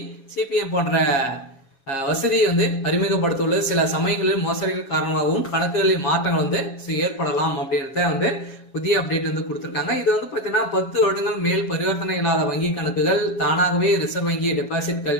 சிபிஎம் போன்ற வசதியை வந்து அறிமுகப்படுத்தியுள்ளது. சில சமயங்களில் மோசடிகள் காரணமாகவும் கணக்குகளில் மாற்றங்கள் வந்து ஏற்படலாம் அப்படின்றத வந்து புதிய அப்டேட் வந்து கொடுத்துருக்காங்க. இது வந்து பார்த்தீங்கன்னா 10 வருடங்கள் மேல் பரிவர்த்தனை இல்லாத வங்கி கணக்குகள் தானாகவே ரிசர்வ் வங்கி டெபாசிட்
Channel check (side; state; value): right; late; 7.3 ms